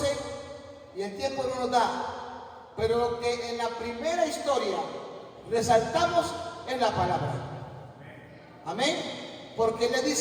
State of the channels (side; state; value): both; identical; correlation 1.00